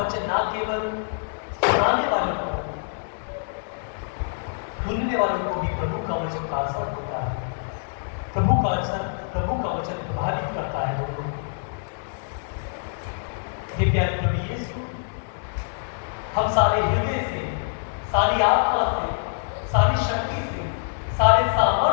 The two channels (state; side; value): silent; right; digital silence